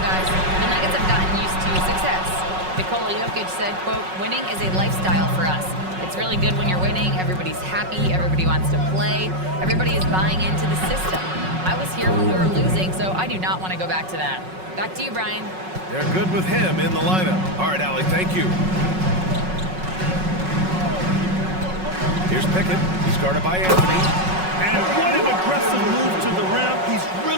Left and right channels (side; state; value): left; late; 5.4 ms